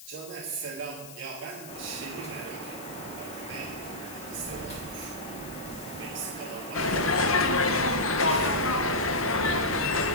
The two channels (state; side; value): noise; left; hiss, 16 dB below the sound